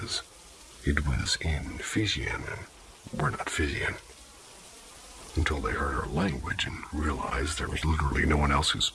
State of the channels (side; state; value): both; identical; correlation 1.00